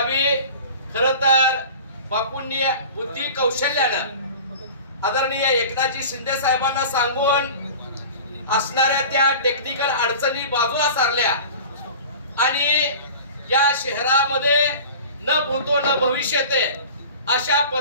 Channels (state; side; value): inverted; both; correlation -0.39